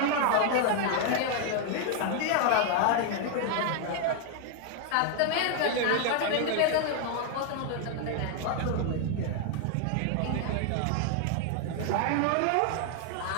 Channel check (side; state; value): both; different; correlation 0.00